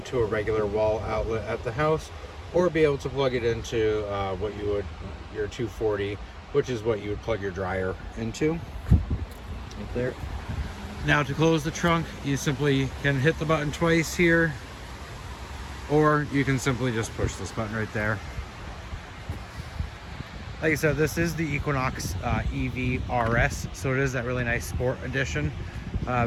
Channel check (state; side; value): identical; both; correlation 1.00